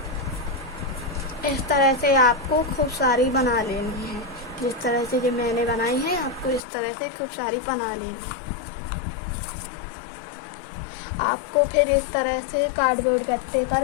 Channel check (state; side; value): drops out; right; at 6.6 s